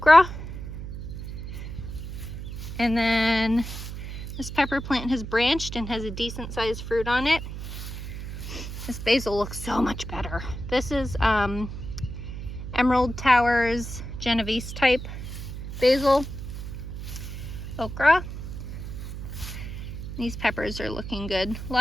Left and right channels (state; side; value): noise; right; hum, 8 dB below the sound